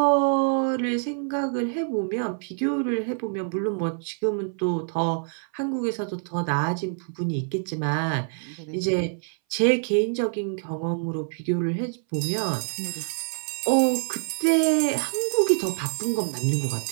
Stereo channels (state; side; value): silent; left; 61 dB below the other